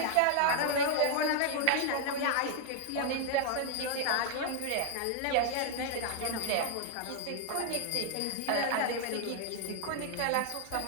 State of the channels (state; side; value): different; both; correlation 0.00